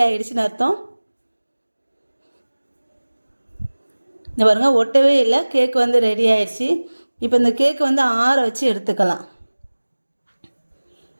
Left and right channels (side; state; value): both; inverted; correlation -1.00